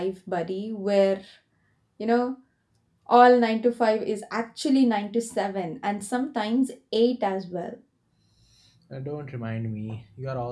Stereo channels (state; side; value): identical; both; correlation 1.00